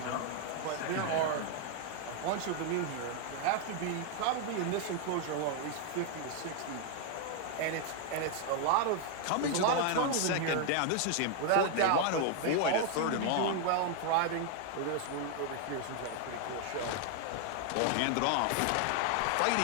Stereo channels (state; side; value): different; both; correlation 0.00